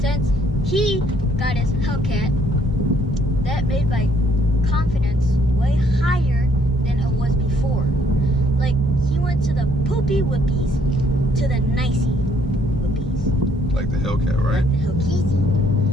he got his Hellcat, that made my confidence way higher than it was before. Like, he went to the poopy whoopies to the nicey whoopies. Like the Hellcat, right? Like the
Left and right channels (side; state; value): both; normal; correlation 0.66